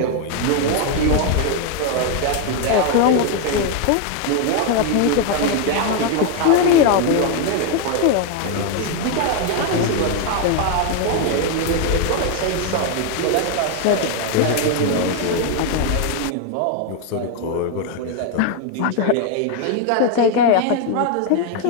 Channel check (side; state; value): both; different; correlation 0.01